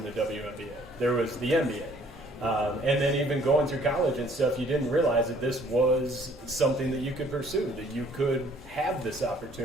a WNBA. There was the NBA. And then even going through college and stuff, you didn't realize that this was something that you could pursue, that you could have this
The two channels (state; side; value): normal; both; correlation 0.59